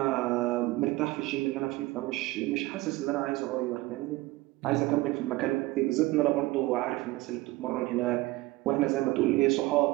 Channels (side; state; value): left; quieter; 19.6 dB